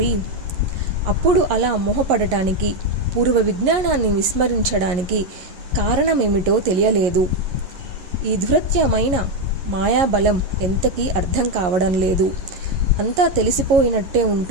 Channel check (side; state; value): left; late; 11 ms